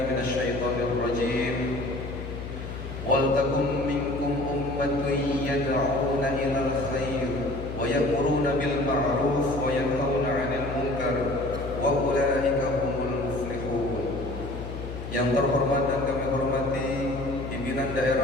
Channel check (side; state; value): left; noise; hum, 8 dB below the sound